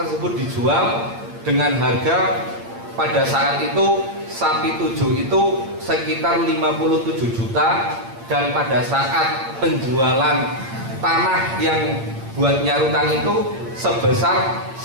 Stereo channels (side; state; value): left; late; 8.7 ms